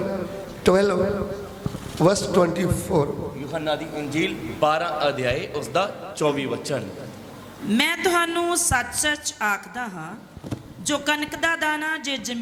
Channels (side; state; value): both; identical; correlation 1.00